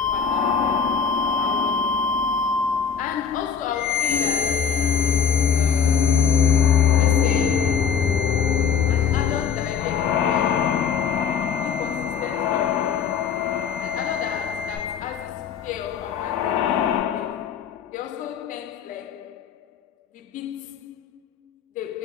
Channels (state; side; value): quieter; right; 6.9 dB